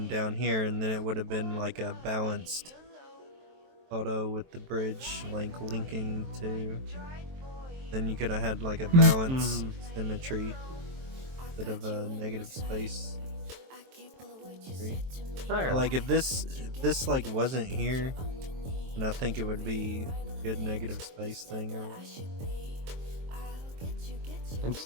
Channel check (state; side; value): late; left; 23 ms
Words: down here, and then it would have been like a balanced photo with the bridge like linking to. Then you could have had like a balanced symmetry instead of a negative space. Okay. Like if this like wasn't here, then I think it would be a good negative space thing. Or